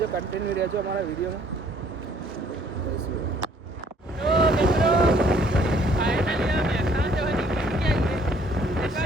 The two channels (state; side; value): normal; both; correlation 0.61